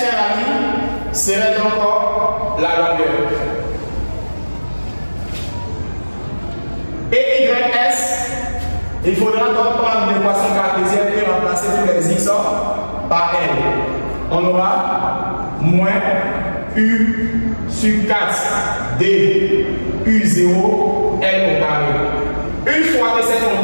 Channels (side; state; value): both; inverted; correlation -1.00